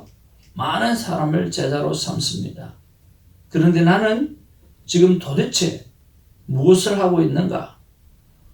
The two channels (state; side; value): identical; both; correlation 1.00